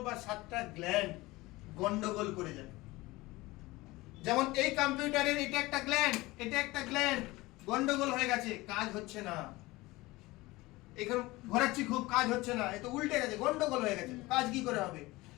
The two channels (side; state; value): right; quieter; 20.5 dB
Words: বা 7টা গ্ল্যান্ড গন্ডগোল করে যায়। যেমন এই কম্পিউটারের এটা একটা গ্ল্যান্ড, এটা একটা গ্ল্যান্ড, গন্ডগোল হয়ে গেছে, কাজ হচ্ছে না। এখানে ঘোরাচ্ছি খুব, কাজ হচ্ছে না, এ তো উল্টে গেছে, গন্ডগোল হয়ে গেছে, কাজ কি করে হবে?